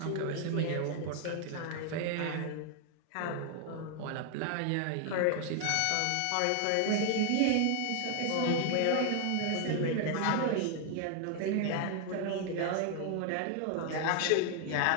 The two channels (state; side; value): different; both; correlation 0.00